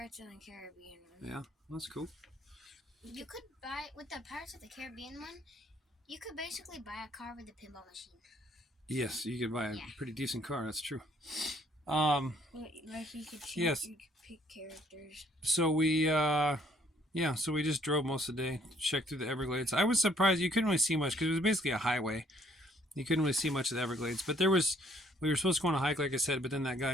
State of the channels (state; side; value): normal; both; correlation 0.63